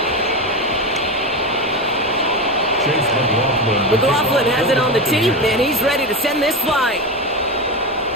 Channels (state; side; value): normal; both; correlation 0.19